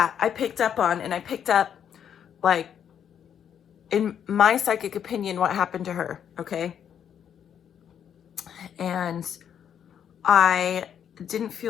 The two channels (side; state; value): right; quieter; 8.7 dB